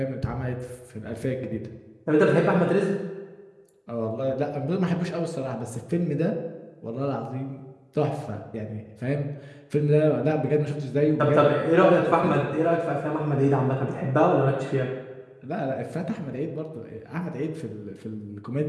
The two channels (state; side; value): identical; both; correlation 1.00